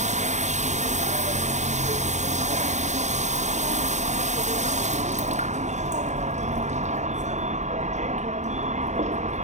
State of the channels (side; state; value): left; late; 0.34 ms